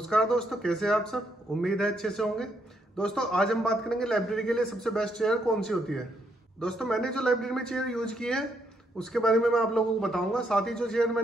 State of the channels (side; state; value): both; normal; correlation 0.75